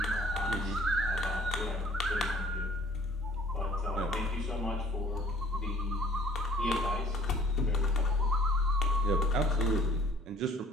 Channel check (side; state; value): both; normal; correlation 0.55